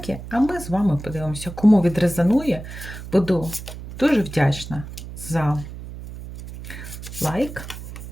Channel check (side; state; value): right; noise; hum, 12 dB below the sound